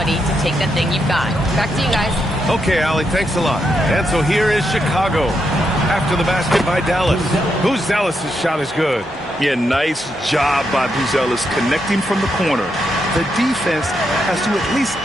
to take that thing you've got. Back to you guys. Okay, Allie, thanks a lot. And so here is Chicago. After the basket by Dallas. Buzelis' shot is good. Yeah, nice job by Buzelis connecting from the corner. The defense has to at least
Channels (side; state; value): both; normal; correlation 0.81